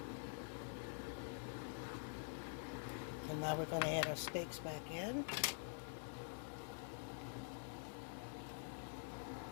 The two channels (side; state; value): right; silent; digital silence